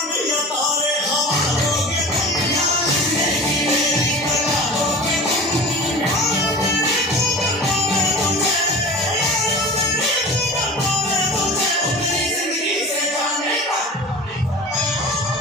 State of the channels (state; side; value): normal; both; correlation 0.35